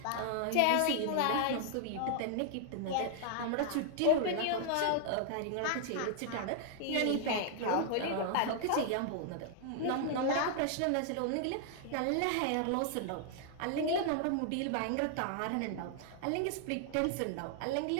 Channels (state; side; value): different; both; correlation 0.00